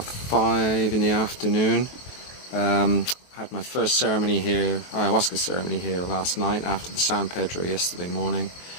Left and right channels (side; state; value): right; late; 23 ms